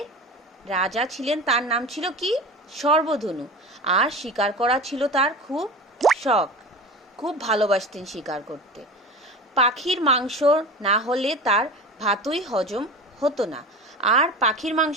রাজা ছিলেন, তার নাম ছিল কি? সর্বধনু। আর শিকার করা ছিল তার খুব শখ, খুব ভালোবাসতেন শিকার করতে। পাখির মাংস না হলে তার ভাতই হজম হতো না। আর পাখির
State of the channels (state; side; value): normal; both; correlation 0.32